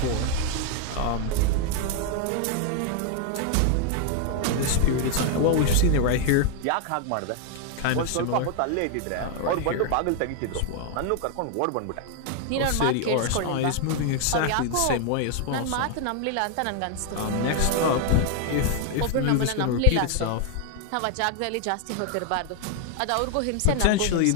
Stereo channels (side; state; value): both; different; correlation 0.00